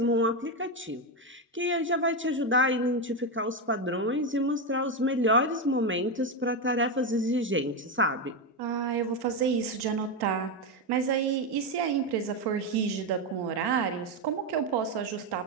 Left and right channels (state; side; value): normal; both; correlation 0.09